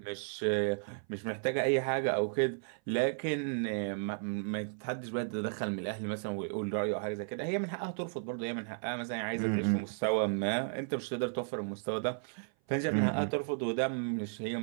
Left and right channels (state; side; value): silent; left; 55 dB below the other